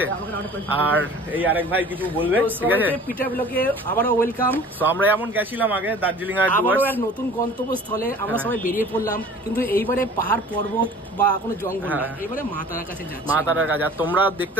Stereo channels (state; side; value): normal; both; correlation 0.46